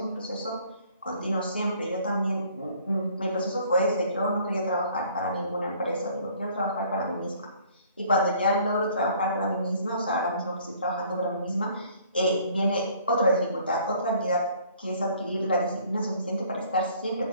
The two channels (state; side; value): inverted; both; correlation -0.57